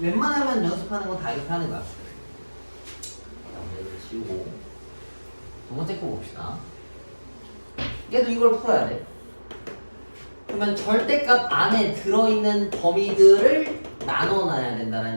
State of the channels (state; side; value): inverted; both; correlation -1.00